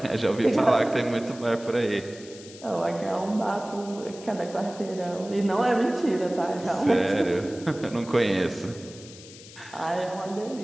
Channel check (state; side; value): noise; left; hiss, 18 dB below the sound